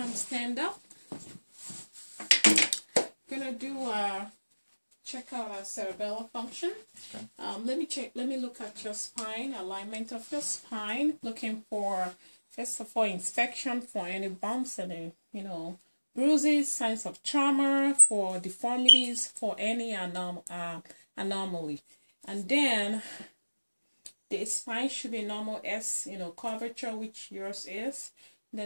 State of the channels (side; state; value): both; inverted; correlation -1.00